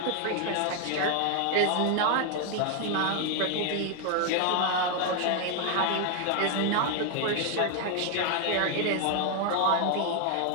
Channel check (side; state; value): both; different; correlation 0.00